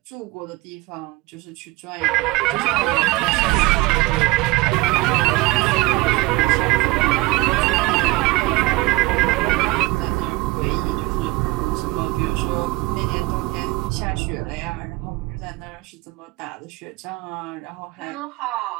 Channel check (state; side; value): quieter; left; 20.9 dB